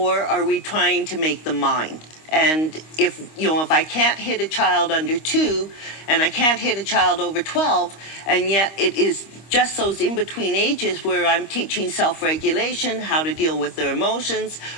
are we trying to make them mind? And if I can't hit a child under 2 and I can't hit a child over 12, and yet it is just those in-between ages where I'm teaching self-regulation, how to deal with their emotions,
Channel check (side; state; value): right; late; 25 ms